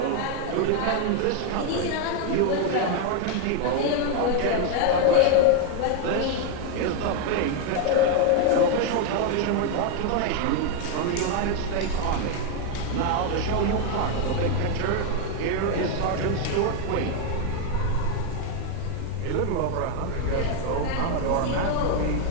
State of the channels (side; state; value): both; different; correlation 0.01